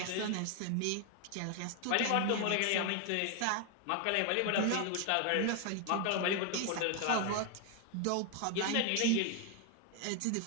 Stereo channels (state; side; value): different; both; correlation 0.01